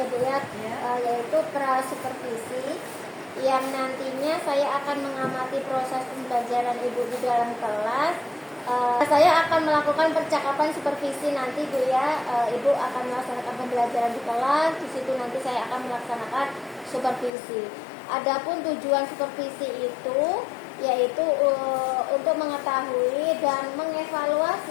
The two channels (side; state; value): right; drops out; at 17.3 s